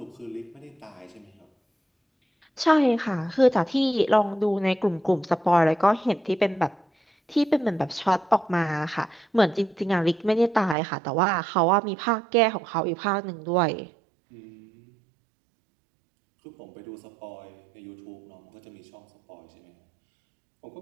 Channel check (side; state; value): left; drops out; at 10.8 s